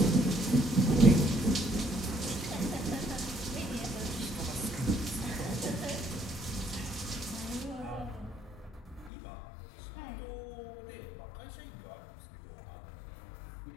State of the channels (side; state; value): right; drops out; at 9.1 s